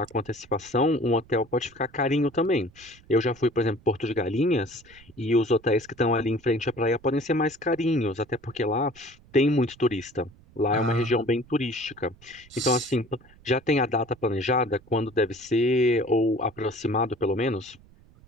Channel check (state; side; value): noise; right; rumble, 26 dB below the sound